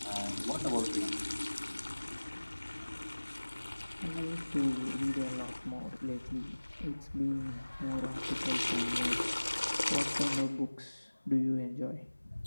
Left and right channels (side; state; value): both; inverted; correlation -1.00